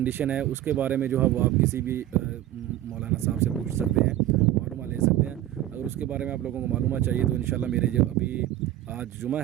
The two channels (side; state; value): left; quieter; 13.4 dB